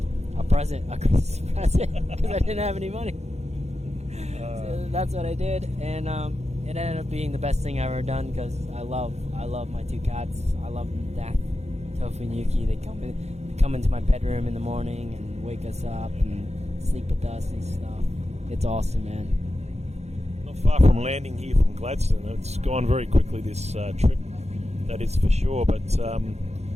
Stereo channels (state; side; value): late; left; 0.32 ms